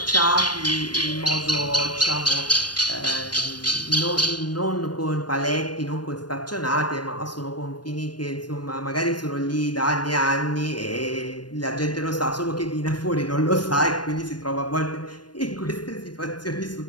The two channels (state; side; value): late; right; 0.70 ms